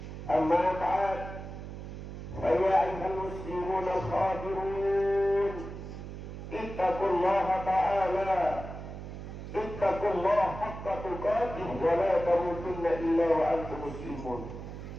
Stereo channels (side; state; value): right; noise; hum, 10 dB below the sound